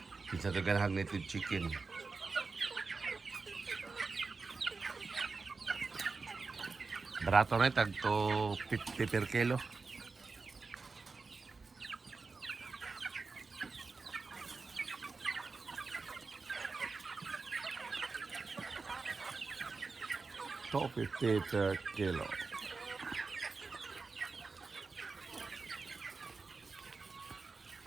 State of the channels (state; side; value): quieter; left; 4.3 dB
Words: Kinsa to ganahang native chicken. Barato na tag to 50 per kilo. To 50 per kilo.